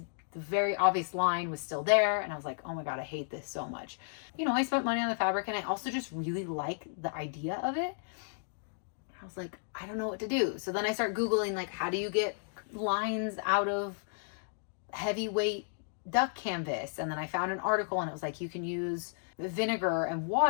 very obvious line was still there, and I was like, oh my god, I hate this so much. You know, I spent money on the fabric, and I also just really like the idea of it. I was like, I don't know what to do. So then I start Googling, like, how do you get lines out of heavyweight duck canvas? And then I found an article, and it was like, you can use vinegar and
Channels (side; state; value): right; silent; digital silence